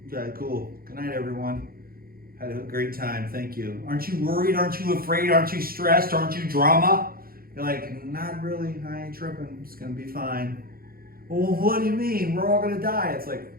okay, cool. Good night, everyone. Had a great time. Thank you. Aren't you worried? Aren't you afraid? Aren't you stressed? Aren't you drama? You're like, not really. I ain't tripping. It's going to be fine. Well, what do you mean? We're all going to die. It's like,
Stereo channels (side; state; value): left; late; 0.43 ms